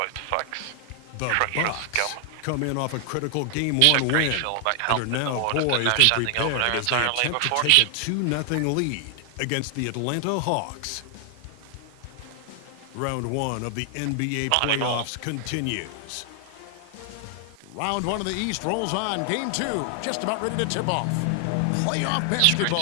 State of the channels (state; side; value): different; both; correlation 0.00